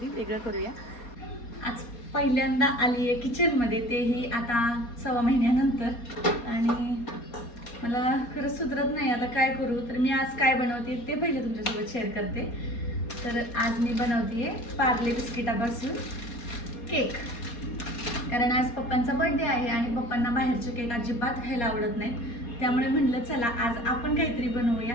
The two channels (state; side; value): late; right; 4.2 ms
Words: वेगळं करूया. आज पहिल्यांदा आली आहे किचनमध्ये, तेही आता 1.25 महिन्यानंतर, आणि मला खरंच सुधरत नाही आता काय करू. तर मी आज काय बनवते ते पहिले तुमच्यासोबत शेअर करते. तर आज मी बनवते आहे पार्ले बिस्किटापासून केक, कारण आज पप्पांचा बर्थडे आहे आणि पप्पांना बाहेरचे केक अजिबात खायला आवडत नाहीत, त्यामुळे म्हटलं चला आज आपण काहीतरी बनवूया.